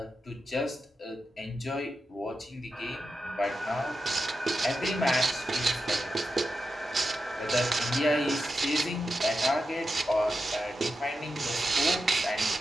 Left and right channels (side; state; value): both; normal; correlation 0.89